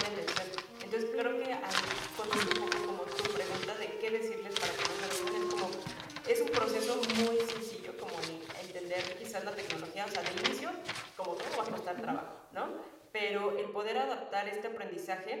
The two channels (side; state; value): both; identical; correlation 1.00